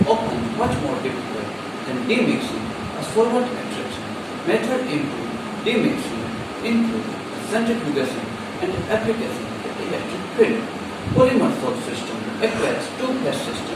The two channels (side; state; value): both; identical; correlation 1.00